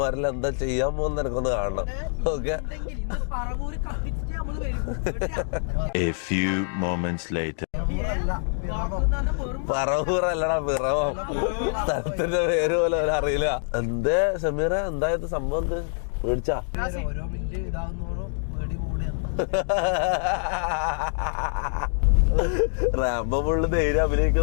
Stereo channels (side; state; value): right; silent; 59 dB below the other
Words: എന്താ ചെയ്യാൻ പോകുന്ന എനിക്കൊന്ന് കാണണം. ഓക്കെ, പറവൂറല്ലടാ പിറവം. സ്ഥലത്തിന്റെ പേര് പോലെ അറിയില്ല. എന്തേ സമീറ, എന്തായത് സംഭവം? എന്ത് പേടിച്ചാ? റാംബോ ഫുള്ള് ധൈര്യം